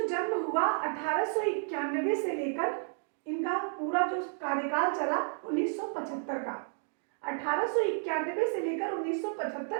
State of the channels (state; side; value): silent; left; 57 dB below the other